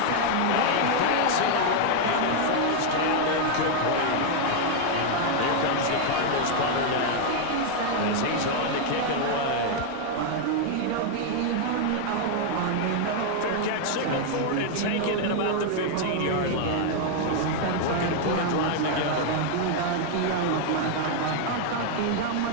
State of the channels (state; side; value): different; both; correlation 0.00